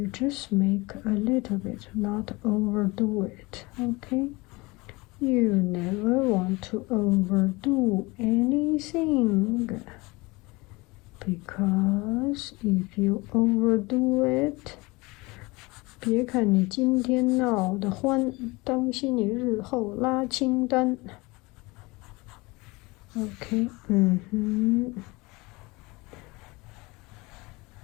just make a little bit, not overdo it, okay? You never want to overdo anything, because if you overdo it, 别看你今天闹得欢，当心你日后拉清单。Okay,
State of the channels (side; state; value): right; quieter; 23.9 dB